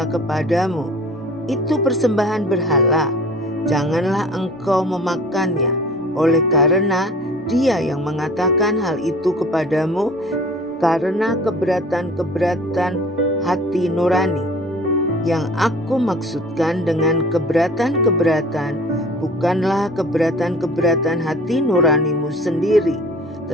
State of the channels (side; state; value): both; normal; correlation 0.46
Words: kepadamu, itu persembahan berhala, janganlah engkau memakannya, oleh karena dia yang mengatakan hal itu kepadamu karena keberatan hati nurani. Yang aku maksudkan dengan keberatan bukanlah keberatan hati nuranimu sendiri,